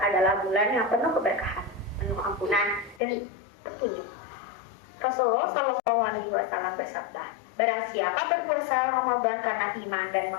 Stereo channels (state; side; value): drops out; right; at 3.0 s